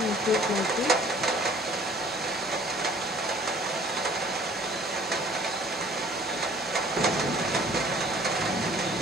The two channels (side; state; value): both; normal; correlation 0.53